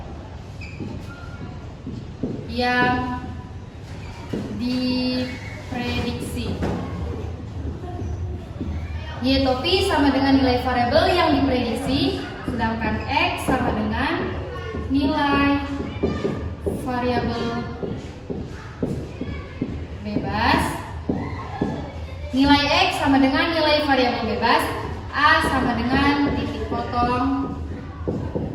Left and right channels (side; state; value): both; identical; correlation 1.00